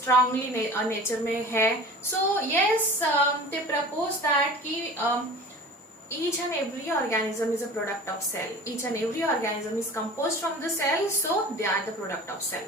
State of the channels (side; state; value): both; normal; correlation 0.39